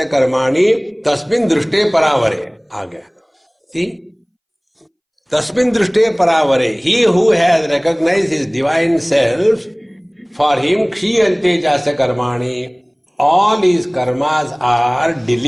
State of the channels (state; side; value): identical; both; correlation 1.00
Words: कर्माणि तस्मिन् दृष्टे परावरे. आ गया. See? Tasmin drishte paravare. He who has recognized his divine self, for him kshiyante jasya karmani. All his karmas are